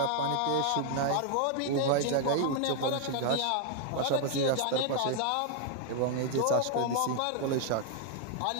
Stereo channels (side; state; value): both; different; correlation 0.00